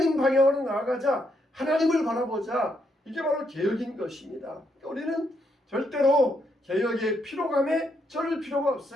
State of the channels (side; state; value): both; normal; correlation 0.77